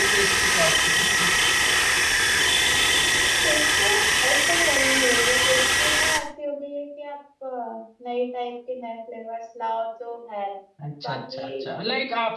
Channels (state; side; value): identical; both; correlation 1.00